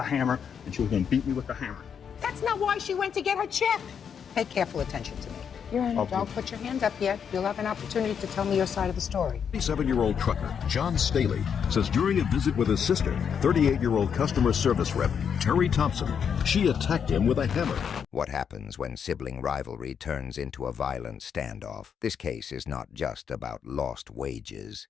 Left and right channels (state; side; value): quieter; right; 7.4 dB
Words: hammer, and she was going to beat me with the hammer. That's not why she went to get her check. Pay careful attention to me. Your Honor, Okay. don't put your hand up yet. You'll have an opportunity to tell me your side of the story. 37-year-old trucker John Staley says during a visit with his sister, 38-year-old customer service rep Terry Thompson, she attacked him with a hammer. What happens when sibling rivalry turns into a violent standoff? This case is not just about lost wages.